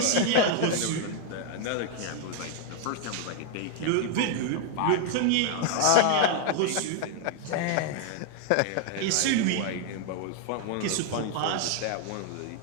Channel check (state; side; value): different; both; correlation 0.00